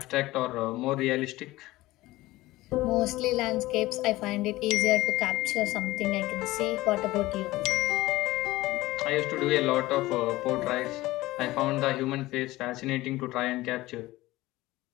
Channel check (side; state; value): right; quieter; 18.2 dB